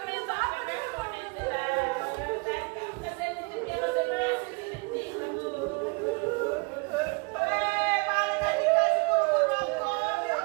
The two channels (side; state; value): left; quieter; 31.1 dB